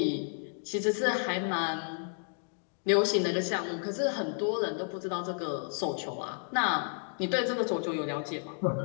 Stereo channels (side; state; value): right; silent; 57 dB below the other